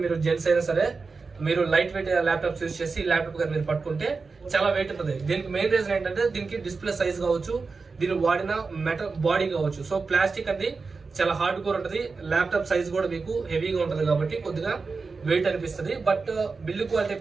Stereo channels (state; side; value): quieter; left; 4.4 dB